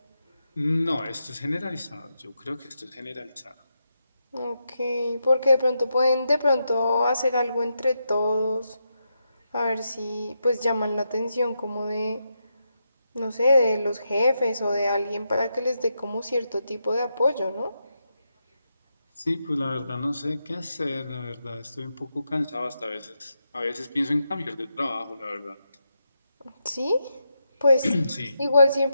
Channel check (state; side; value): inverted; both; correlation -0.85